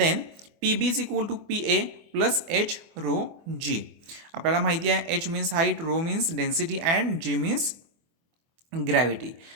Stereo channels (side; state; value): left; late; 24 ms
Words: P B is equal to P A plus H rho G. आपल्याला माहिती आहे H means height, rho means density and G means gravity.